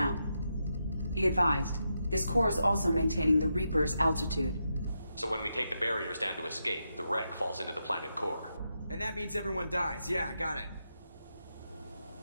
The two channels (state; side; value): inverted; both; correlation -0.85